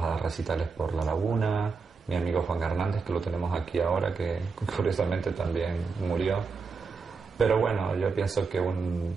a dar recitales por La Laguna. Mi amigo Juan Hernández, que lo tenemos aquí ahora, que curiosamente también murió. Pero bueno, yo pienso que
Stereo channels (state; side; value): quieter; left; 4.8 dB